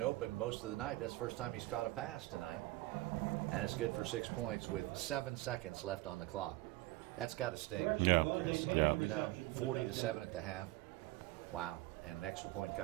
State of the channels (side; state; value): left; quieter; 19.2 dB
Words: most of the night. That's the first time he's caught a pass tonight. And it's good for 6 points with 7 seconds left on the clock. That's got to sting, Chris. I mean, 40-7 at the half. Wow. And an extra point